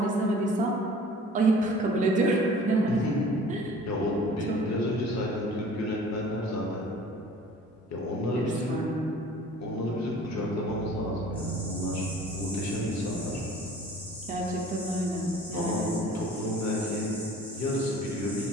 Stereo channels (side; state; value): both; normal; correlation 0.48